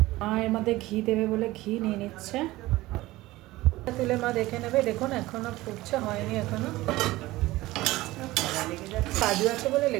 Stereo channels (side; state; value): left; quieter; 18.3 dB